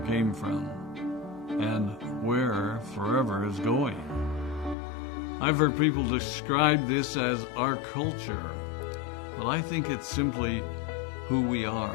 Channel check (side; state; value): right; drops out; at 4.8 s